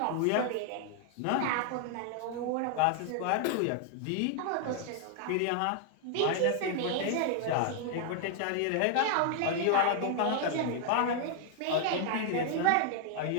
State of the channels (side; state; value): both; different; correlation 0.00